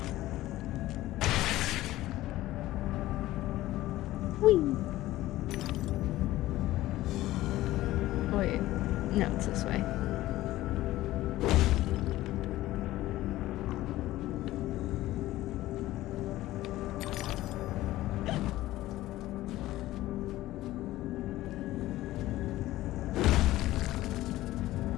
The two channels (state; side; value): quieter; right; 16.1 dB